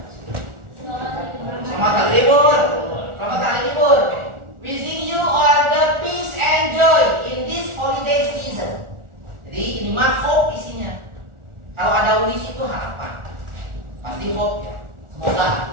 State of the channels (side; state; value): left; late; 1.4 ms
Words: Selamat hari libur. Selamat hari libur. Wishing you all the peace and joy in this holiday season. Jadi ini mah hope isinya. Kalau ada wish itu harapan. Pasti hope ya. Semoga.